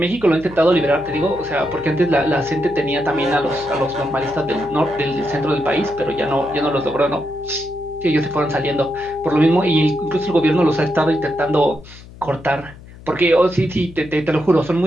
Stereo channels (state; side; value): noise; left; hum, 19 dB below the sound